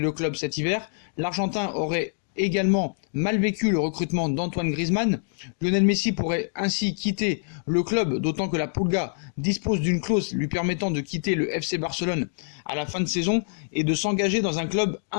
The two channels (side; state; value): right; silent; digital silence